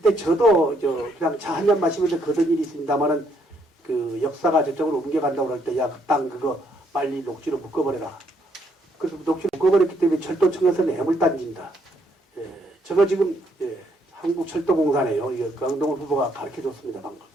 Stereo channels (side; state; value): both; normal; correlation 0.71